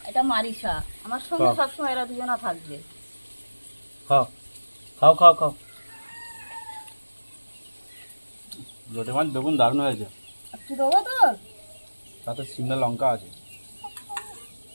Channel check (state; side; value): inverted; both; correlation -1.00